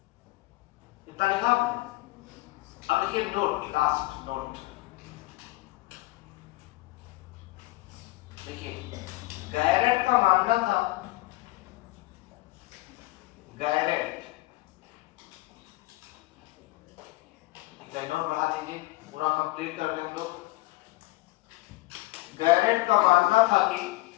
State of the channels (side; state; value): right; quieter; 20.9 dB